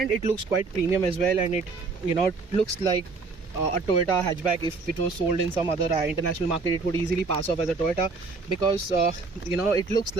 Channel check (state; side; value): quieter; left; 4.2 dB